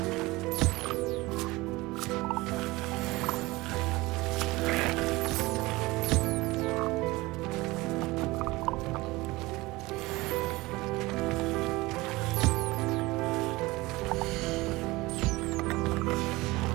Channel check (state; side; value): quieter; left; 21.1 dB